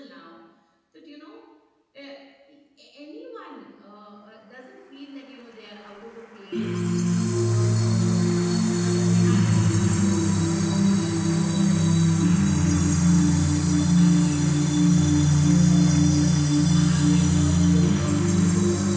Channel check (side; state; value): both; identical; correlation 1.00